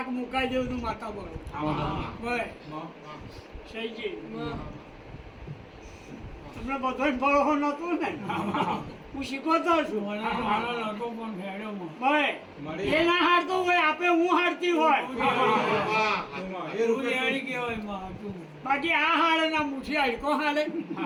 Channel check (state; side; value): identical; both; correlation 1.00